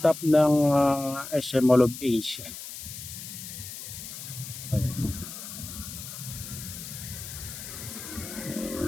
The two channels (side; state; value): left; noise; hiss, 10 dB below the sound